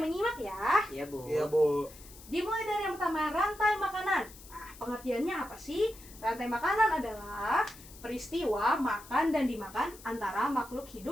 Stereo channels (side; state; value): left; noise; hiss, 19 dB below the sound